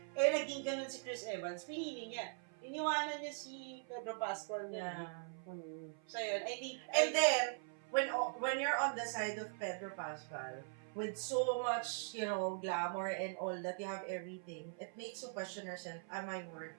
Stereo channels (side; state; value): left; silent; 50 dB below the other